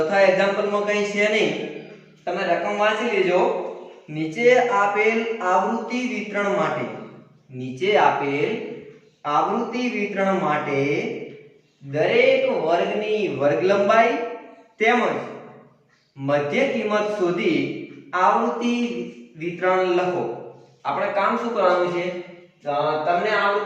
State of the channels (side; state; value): both; identical; correlation 1.00